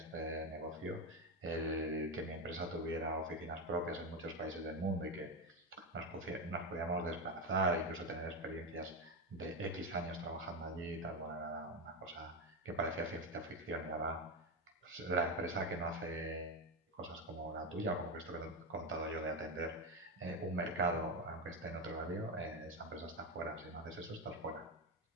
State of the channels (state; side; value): normal; both; correlation 0.12